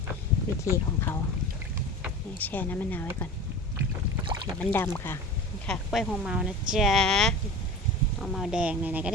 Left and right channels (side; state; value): both; normal; correlation 0.34